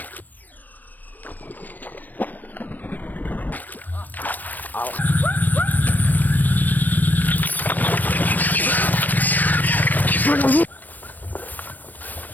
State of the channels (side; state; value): right; late; 0.087 ms